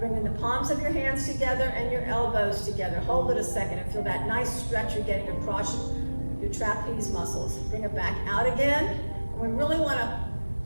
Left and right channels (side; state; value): both; inverted; correlation -1.00